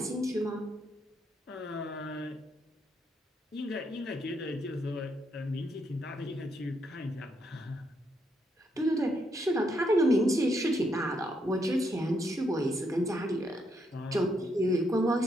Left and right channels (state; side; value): normal; both; correlation 0.77